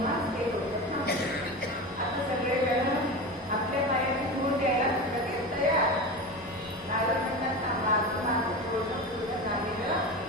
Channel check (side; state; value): both; normal; correlation 0.26